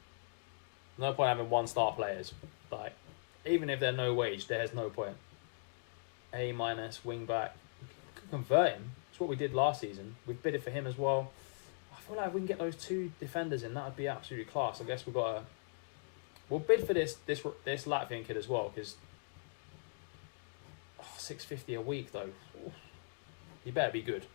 No point having one-star players. Like, even if they're no wage, there's no point. A- wing back. We could convert him. That's what we did last season. We bid it for him as well. I feel like if we can get those 2 defenders in, that would be absolutely class. I guess we'll bid for this Latvian kid as well, because $650 a week though. Ooh. You better be good.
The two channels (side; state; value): right; silent; digital silence